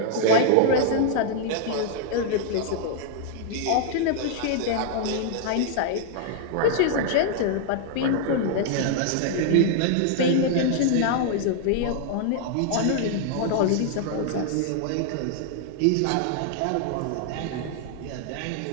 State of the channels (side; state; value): both; different; correlation 0.00